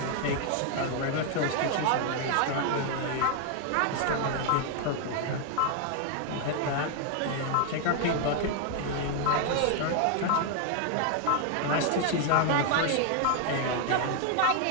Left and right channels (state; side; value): different; both; correlation 0.00